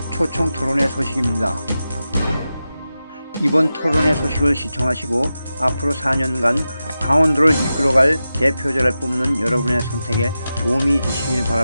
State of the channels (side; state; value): both; inverted; correlation -0.92